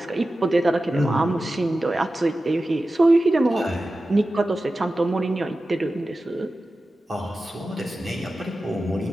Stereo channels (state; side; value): normal; both; correlation 0.94